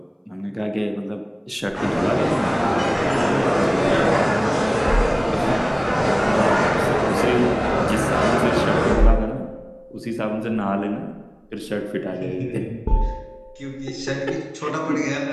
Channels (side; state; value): both; identical; correlation 1.00